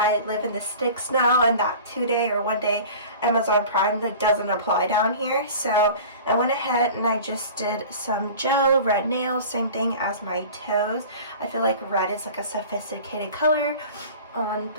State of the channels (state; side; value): inverted; both; correlation -0.40